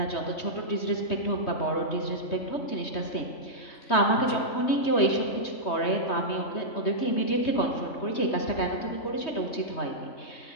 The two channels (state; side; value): late; right; 3.2 ms